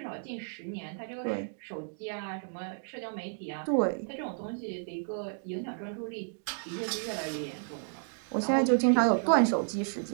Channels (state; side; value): silent; left; digital silence